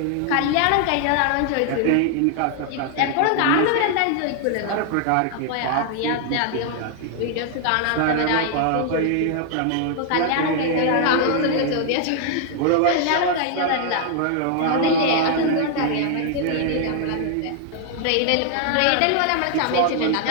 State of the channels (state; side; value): different; both; correlation 0.00